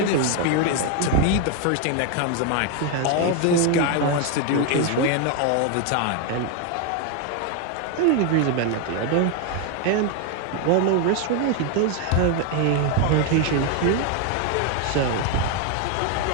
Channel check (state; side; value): different; both; correlation 0.01